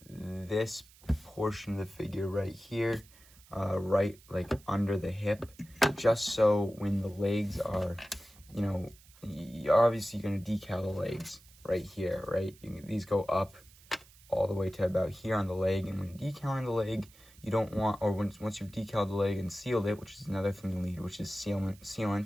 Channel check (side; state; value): right; noise; hiss, 25 dB below the sound